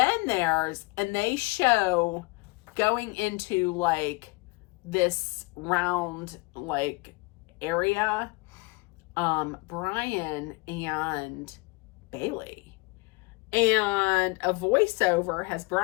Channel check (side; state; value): right; quieter; 25.5 dB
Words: they show going into like this round like area, Brian and Bailey, and a voiceover has